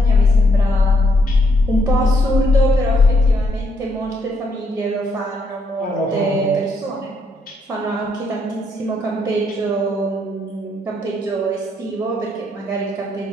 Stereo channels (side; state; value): both; normal; correlation 0.74